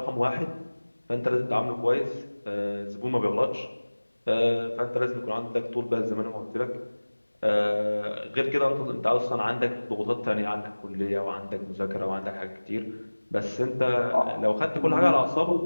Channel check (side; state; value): both; inverted; correlation -1.00